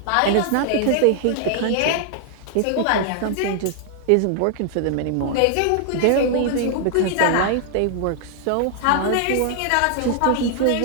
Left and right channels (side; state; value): both; different; correlation 0.00